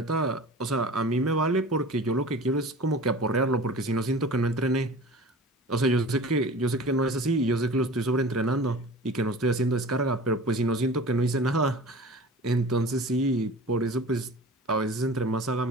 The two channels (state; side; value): normal; both; correlation 0.39